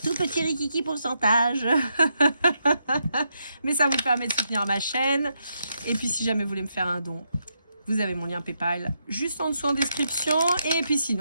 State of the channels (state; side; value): inverted; both; correlation -0.81